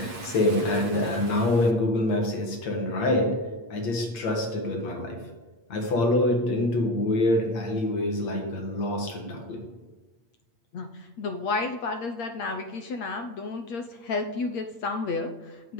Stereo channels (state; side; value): late; right; 8.6 ms